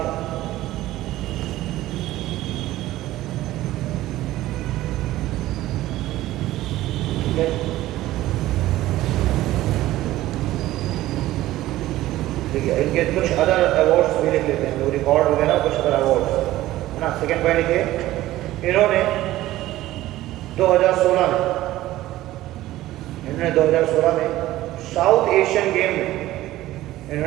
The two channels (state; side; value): quieter; left; 15.7 dB